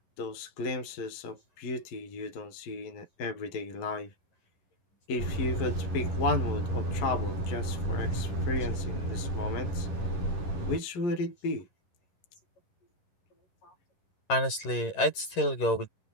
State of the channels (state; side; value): late; right; 11 ms